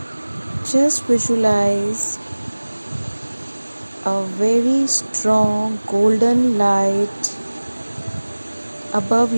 Just visualize a very strong golden light above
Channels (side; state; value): both; inverted; correlation -1.00